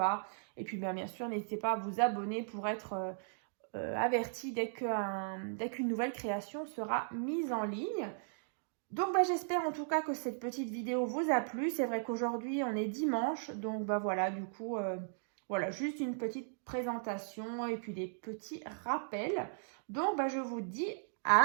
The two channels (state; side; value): silent; left; digital silence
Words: Et puis bien sûr, n'hésitez pas à vous abonner pour être averti dès qu'une nouvelle création sera mise en ligne. Donc j'espère en tout cas que cette petite vidéo vous a plu. C'est vrai qu'aujourd'hui on est dimanche, donc voilà, du coup, voilà, juste une petite présentation et puis des petits rappels. Donc je vous dis